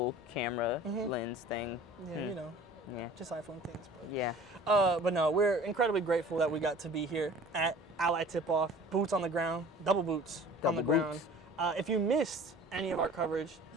camera lens thing. Yeah, you know, Yeah. just iPhone things. But Yeah. But no, we're incredibly grateful that we got to be here at Ally Tipoff. Boots on the ground, double boots on the Double ground. boots. If you missed any of our coverage,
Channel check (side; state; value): both; normal; correlation 0.46